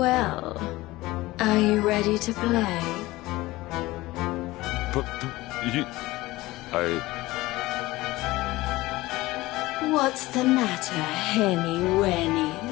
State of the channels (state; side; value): quieter; right; 19.1 dB